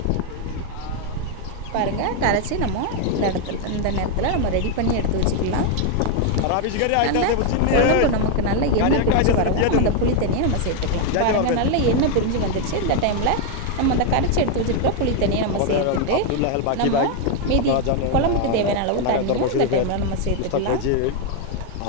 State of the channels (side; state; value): both; different; correlation 0.01